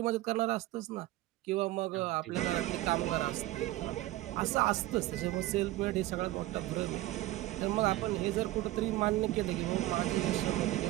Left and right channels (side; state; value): left; quieter; 16.7 dB